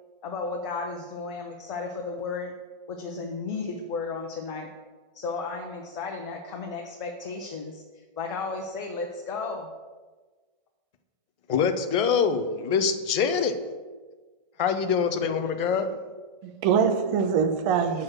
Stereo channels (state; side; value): late; left; 1.6 ms